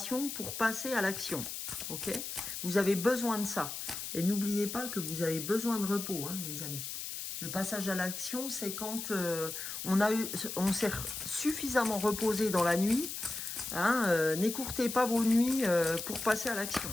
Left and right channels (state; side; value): noise; left; hiss, 6 dB below the sound